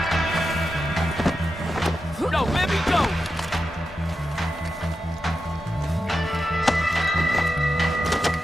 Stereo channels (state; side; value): normal; both; correlation 0.90